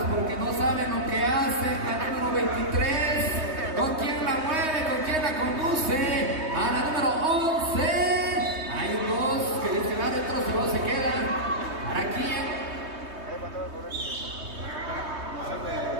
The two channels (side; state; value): left; late; 3.2 ms